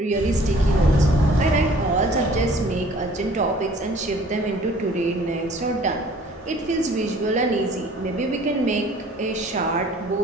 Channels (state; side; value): normal; both; correlation 0.53